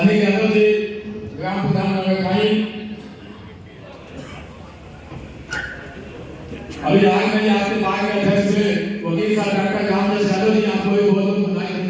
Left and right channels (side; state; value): both; identical; correlation 1.00